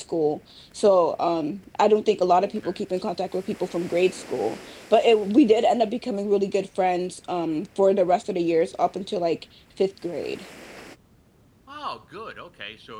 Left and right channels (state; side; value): identical; both; correlation 1.00